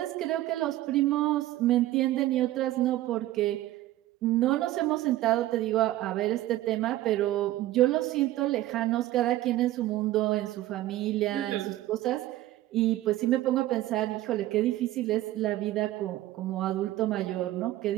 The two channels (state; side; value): quieter; left; 15.3 dB